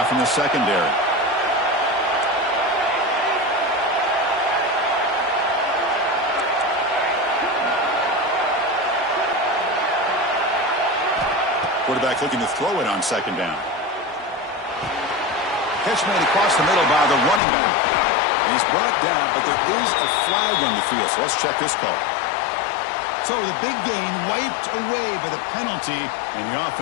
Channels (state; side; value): drops out; right; at 17.4 s